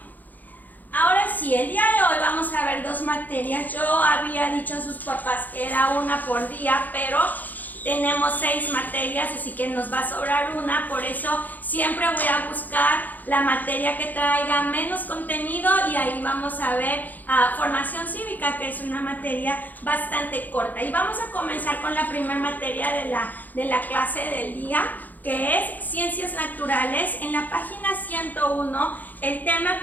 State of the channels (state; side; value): late; right; 0.083 ms